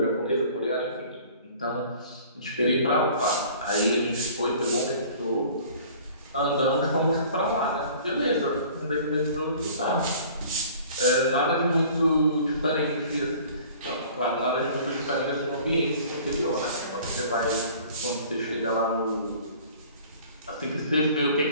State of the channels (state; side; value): inverted; both; correlation -0.49